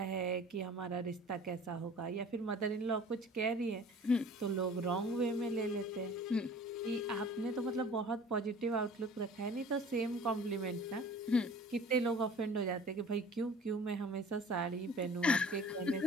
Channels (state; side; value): normal; both; correlation 0.46